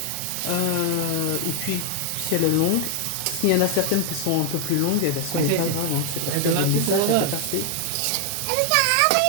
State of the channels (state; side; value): different; both; correlation 0.00